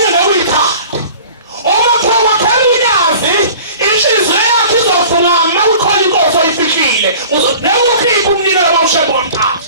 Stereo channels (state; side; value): inverted; both; correlation -0.44